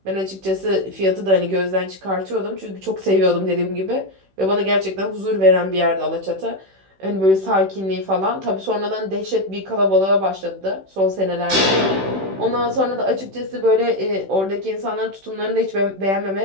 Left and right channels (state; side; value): late; left; 16 ms